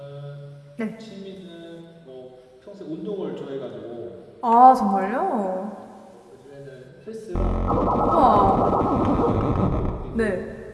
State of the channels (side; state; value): both; identical; correlation 1.00